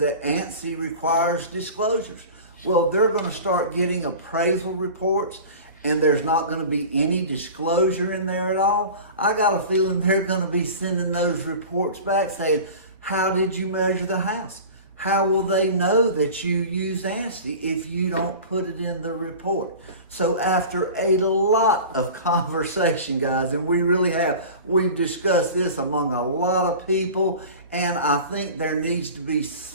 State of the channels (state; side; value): inverted; both; correlation -0.37